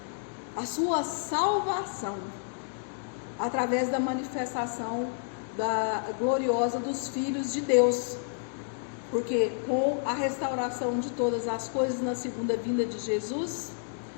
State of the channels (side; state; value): right; silent; digital silence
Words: a sua salvação, através da manifestação gloriosa dos filhos de Deus. Porque com a restauração de todas as coisas na segunda vinda de Jesus,